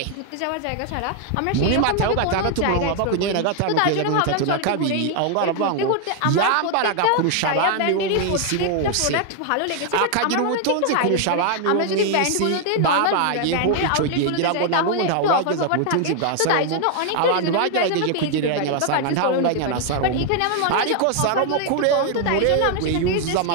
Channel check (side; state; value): both; different; correlation 0.00